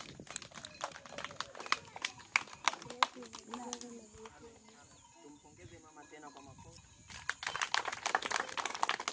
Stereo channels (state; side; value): identical; both; correlation 1.00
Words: Tumpongeze mama tena kwa makofi.